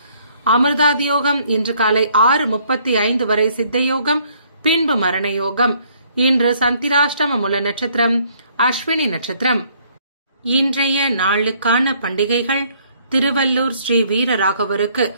அமிர்தாதியோகம் இன்று காலை 6:35 வரை சித்தயோகம், பின்பு மரணயோகம். இன்று சந்திராஷ்டம மூல நட்சத்திரம் அஸ்வினி நட்சத்திரம். இன்றைய நாளுக்கான பண்டிகைகள்: திருவள்ளூர் ஸ்ரீ வீரராகவருக்கு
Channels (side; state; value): both; inverted; correlation -0.64